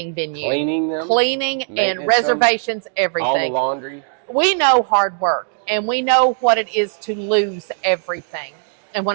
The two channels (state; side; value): silent; left; 67 dB below the other